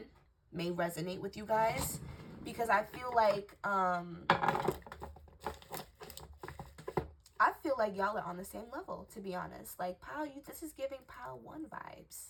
may resonate with you guys, because I feel like y'all are on the same level, to be honest. Like, pile, this is giving pile 1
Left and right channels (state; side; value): identical; both; correlation 1.00